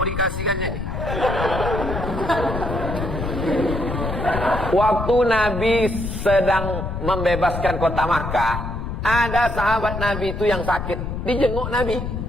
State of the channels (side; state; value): left; noise; rumble, 5 dB below the sound